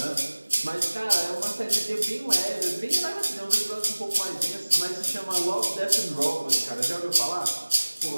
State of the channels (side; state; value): both; inverted; correlation -1.00